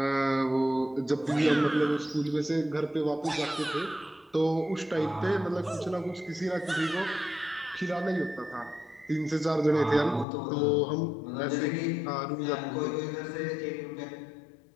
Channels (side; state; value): right; drops out; at 10.2 s